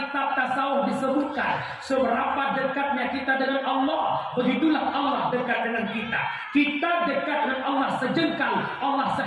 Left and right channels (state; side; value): identical; both; correlation 1.00